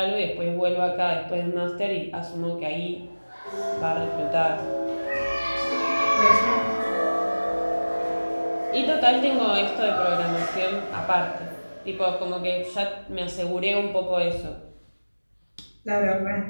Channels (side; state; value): both; inverted; correlation -1.00